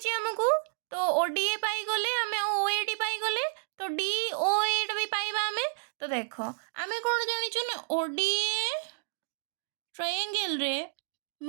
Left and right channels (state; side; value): silent; left; digital silence